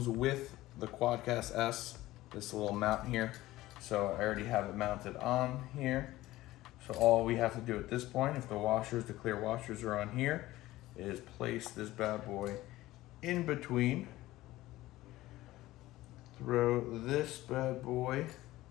with the Quadcast S this little mount here. So I already have it mounted on here. So all we have to do at this point, if the clear washers are on here, is place this bad boy in between. Throw this bad boy,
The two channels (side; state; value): right; quieter; 16.9 dB